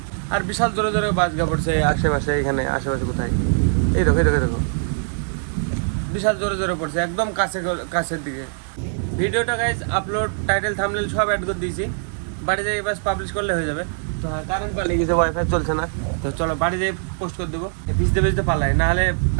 আর বিশাল জোরে জোরে বাজগা পড়ছে আশেপাশে, এখানে আশেপাশে কোথায়, এই দেখো এই দেখো দেখো, বিশাল জোরে জোরে পড়ছে একদম কাছের দিকে। ভিডিওটা গাইজ আপলোড, টাইটেল, থাম্বনেল সব অ্যাড করে দিয়েছি। বাড়ি যাই বাস পাবলিশ করলে হয়ে যাবে। তো হ্যাঁ, কারেন্ট পালিয়ে গেছে, ওয়াইফাই চলছে না। তো চলো বাড়ি যাই পোস্ট করে দেবো। ভিজতে ভিজতে পালাই, নাহলে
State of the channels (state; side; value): silent; left; digital silence